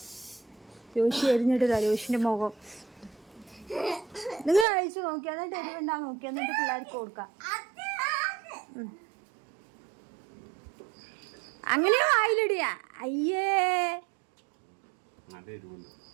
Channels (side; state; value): left; drops out; at 4.7 s